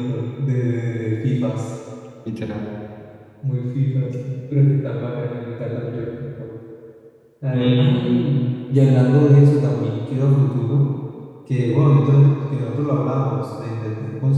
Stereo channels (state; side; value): identical; both; correlation 1.00